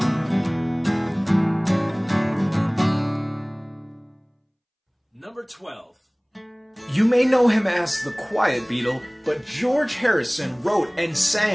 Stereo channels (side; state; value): both; identical; correlation 1.00